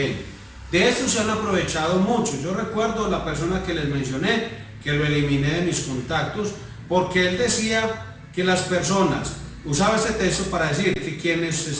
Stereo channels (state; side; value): identical; both; correlation 1.00